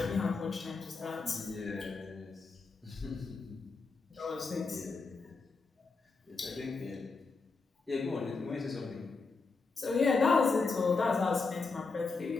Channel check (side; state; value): right; quieter; 4.2 dB